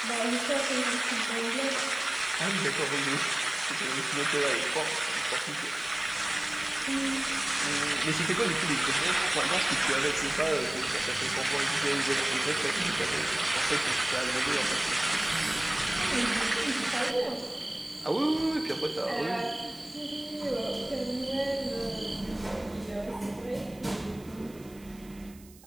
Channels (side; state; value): right; noise; hiss, 24 dB below the sound